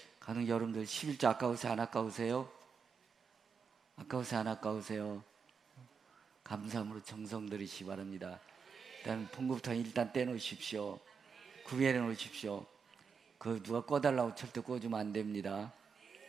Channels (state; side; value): quieter; left; 5.9 dB